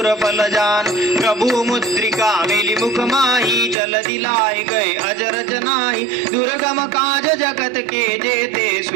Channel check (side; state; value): left; drops out; at 3.8 s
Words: फल जान प्रभु मुद्रिका मिली मुख माही जल दिलाए गए अजर जनाई दुर्गम काज जगत के जेते